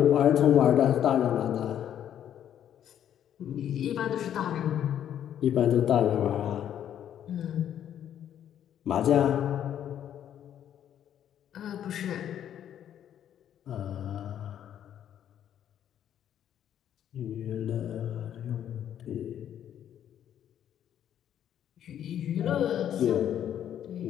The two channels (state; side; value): quieter; right; 10.2 dB